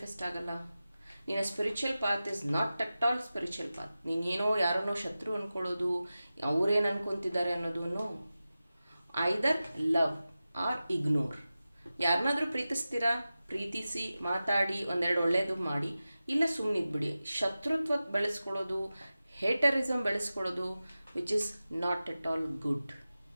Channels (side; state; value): both; inverted; correlation -0.95